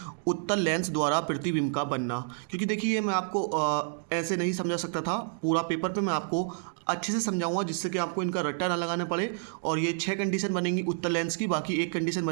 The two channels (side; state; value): left; silent; digital silence